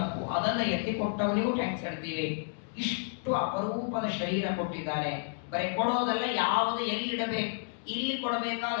ಅದನ್ನ ಎತ್ತಿ ಕೊಟ್ಟವನಿಗೂ ಟ್ಯಾಂಕ್ಸ್ ಹೇಳ್ತೀವಿ. ಇಷ್ಟು ಅಪರೂಪದ ಶರೀರ ಕೊಟ್ಟಿದ್ದಾನೆ. ಬರೀ ಕೊಡೋದಲ್ಲ, ಯಾವುದು ಎಲ್ಲಿಡಬೇಕು, ಇಲ್ಲಿ ಕೊಡಬೇಕಾದ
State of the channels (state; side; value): silent; right; digital silence